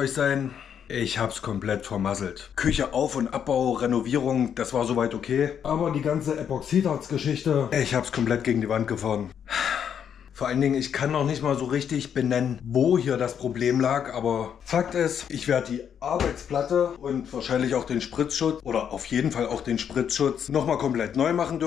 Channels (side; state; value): right; quieter; 8.3 dB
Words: sein. Ich hab's komplett vermasselt. Küche Auf- und Abbau, Renovierung, das war soweit okay. Aber die ganze Epoxidharz-Geschichte, ich hab's komplett gegen die Wand gefahren. Vor allen Dingen, ich kann noch nicht mal so richtig benennen, wo hier das Problem lag, aber Fakt ist, ich werde die Arbeitsplatte und wahrscheinlich auch den Spritzschutz oder auf jeden Fall auch den Spritzschutz nochmal komplett neu machen